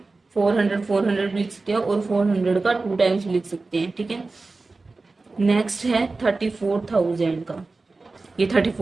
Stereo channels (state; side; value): quieter; left; 3.6 dB